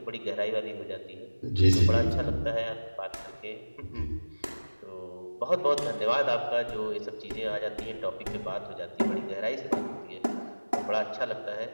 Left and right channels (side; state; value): both; inverted; correlation -1.00